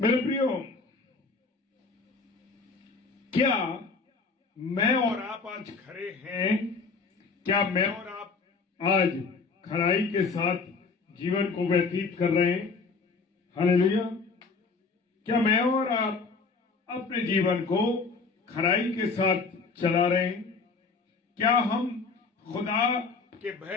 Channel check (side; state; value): right; quieter; 4.5 dB